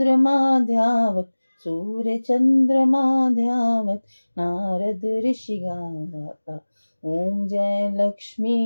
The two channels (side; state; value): both; inverted; correlation -1.00